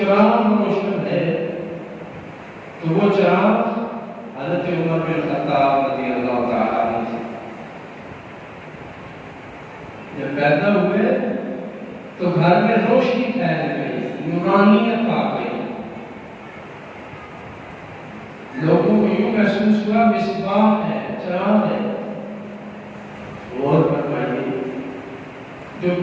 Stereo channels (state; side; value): identical; both; correlation 1.00